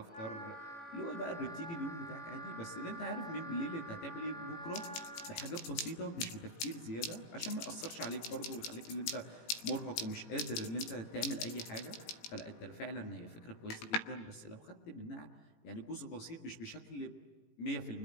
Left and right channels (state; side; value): late; right; 18 ms